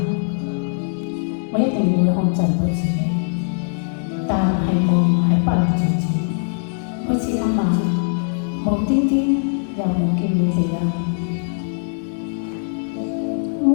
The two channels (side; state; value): right; silent; digital silence